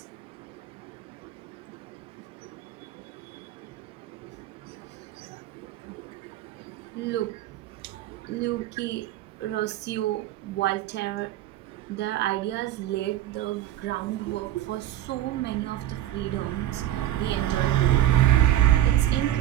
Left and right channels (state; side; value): quieter; left; 13.0 dB